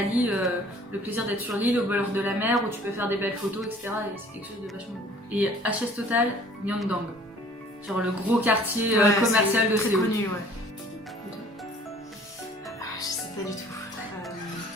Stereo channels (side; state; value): both; normal; correlation 0.52